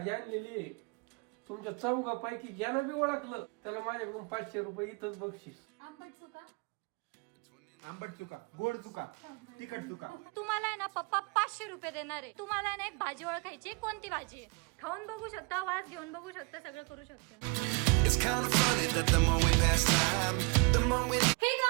आणलेली आहे तुमच्या चौघापैकी ज्यानं बी ओळखलं त्याला माझ्याकडून 500 रुपये इथंच बक्षीस. आंबट चुका, आंबट चुका, गोड चुका, तिखट चुका. तुम्हाला आहे ना पप्पा 500 रुपये देणार आहे. तुम्हाला ना एक भाजी ओळखायची, कोणती भाजी आहे खाऊन बघू शकता, वास घेऊन बघू शकता, सगळं करू शकता. It's kind of funny that the more we pass time, the more we हे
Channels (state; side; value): quieter; left; 31.1 dB